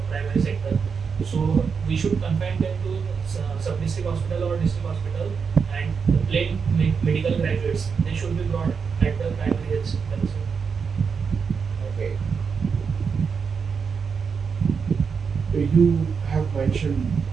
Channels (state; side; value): quieter; left; 5.9 dB